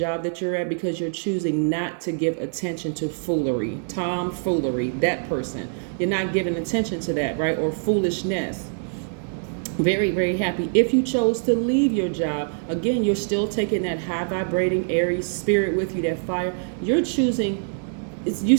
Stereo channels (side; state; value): left; silent; digital silence